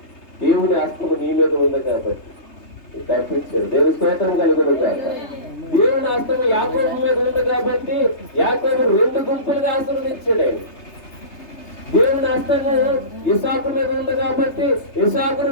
దేవుని హస్తము నీ మీద ఉంది కాబట్టి తప్పించాడు. దేవుని స్తోత్రం కలుగును కాక. దేవుని హస్తము యాకోబు మీద ఉంది కాబట్టి యాకోబు 2 గుంపులుగా ఆశీర్వదించాడు ఆయన. దేవుని హస్తము ఇసాకు మీద ఉంది కాబట్టి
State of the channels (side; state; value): right; late; 3.3 ms